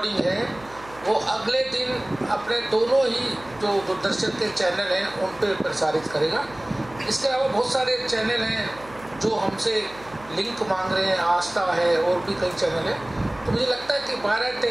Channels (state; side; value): noise; right; hum, 21 dB below the sound